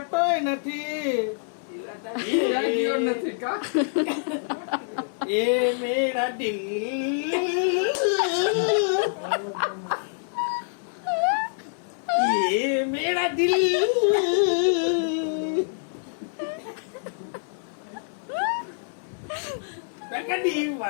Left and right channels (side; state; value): right; silent; 61 dB below the other